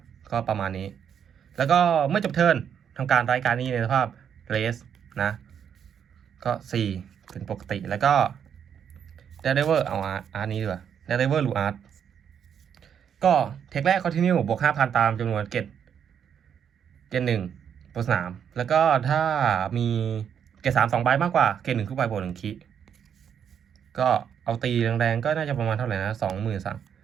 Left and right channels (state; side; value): quieter; left; 8.2 dB